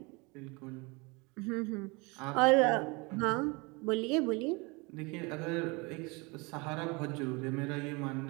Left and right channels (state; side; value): quieter; left; 27.7 dB